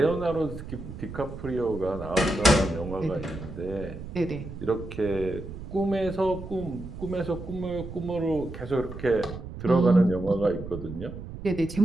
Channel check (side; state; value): right; noise; rumble, 11 dB below the sound